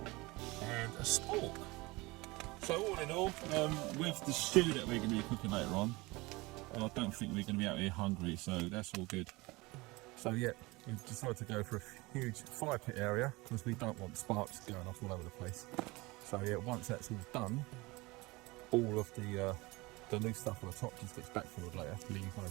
and a spork. So all in all, with the stew that we're going to be cooking later on, I don't think we're going to be out here hungry, so that's all good. So yeah, we decided to go for a huge fire pit area because we don't want sparks going off all over the place. So yeah, once that's all done, all of the loose stuff on the top just gets backfilled later, leave no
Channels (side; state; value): left; quieter; 22.9 dB